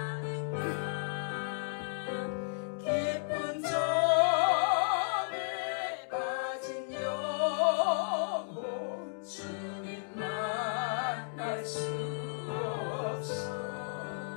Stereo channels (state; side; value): silent; right; digital silence